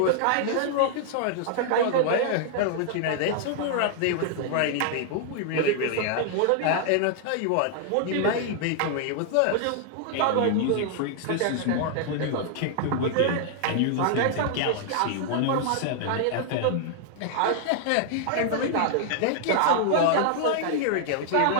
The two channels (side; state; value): both; different; correlation -0.01